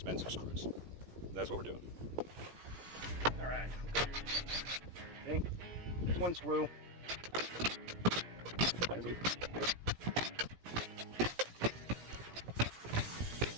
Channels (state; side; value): late; left; 17 ms